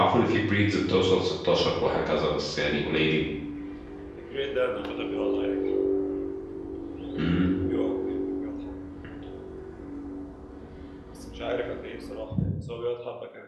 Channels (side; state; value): both; identical; correlation 1.00